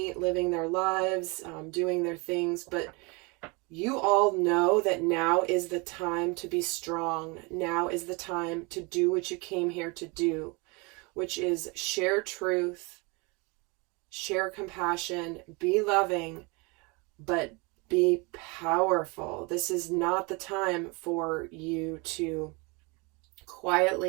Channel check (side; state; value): left; quieter; 28.6 dB